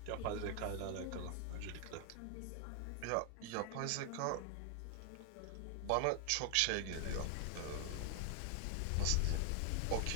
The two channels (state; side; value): different; both; correlation 0.00